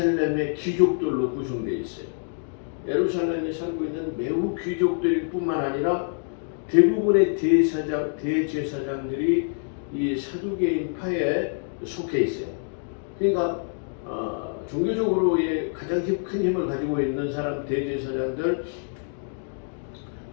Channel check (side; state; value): right; silent; digital silence